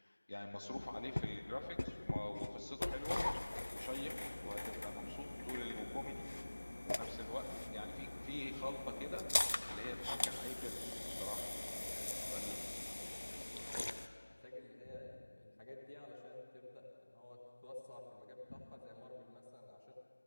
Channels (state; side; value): inverted; both; correlation -1.00